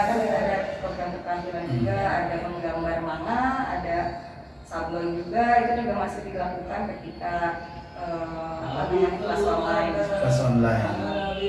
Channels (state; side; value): identical; both; correlation 1.00